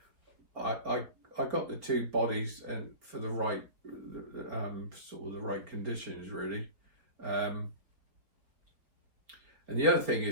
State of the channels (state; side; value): late; left; 4.4 ms